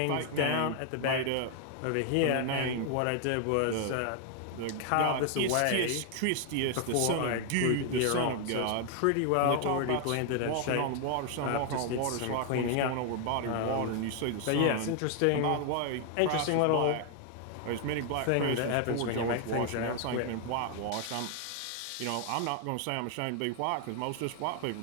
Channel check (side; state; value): both; different; correlation 0.00